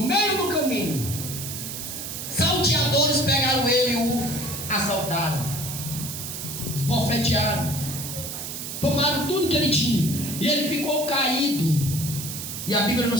meio do caminho, salteadores pegaram ele e o assaltaram, esbofetearam, tomaram tudo que ele tinha, e ele ficou caído, e a Bíblia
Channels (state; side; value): noise; right; hiss, 7 dB below the sound